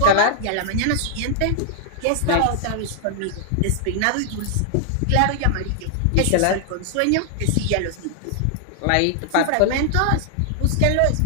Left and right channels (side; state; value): both; different; correlation 0.00